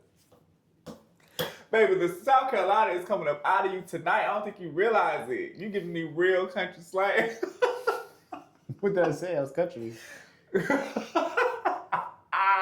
Baby, the South Carolina is coming up out of you tonight. I don't think you realize it. You giving me real country slang. What did I say? I was country.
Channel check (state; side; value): identical; both; correlation 1.00